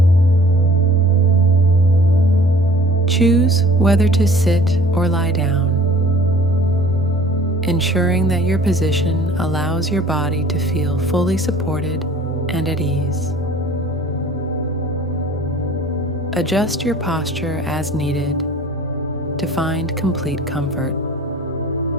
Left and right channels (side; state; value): both; normal; correlation 0.49